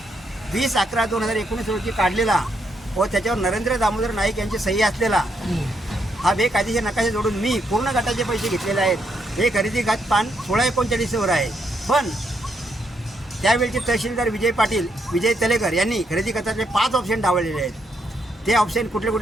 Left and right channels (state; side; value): normal; both; correlation 0.77